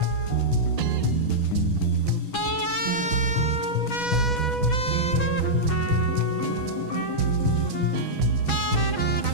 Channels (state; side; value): late; right; 6.2 ms